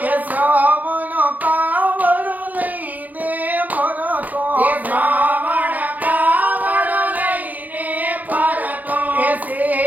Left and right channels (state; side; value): late; left; 0.080 ms